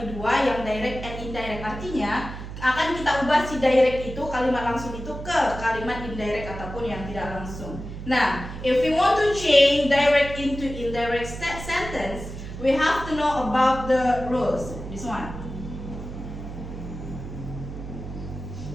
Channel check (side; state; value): right; noise; hum, 10 dB below the sound